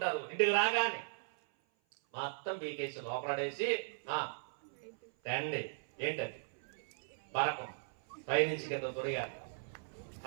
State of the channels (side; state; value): left; silent; 52 dB below the other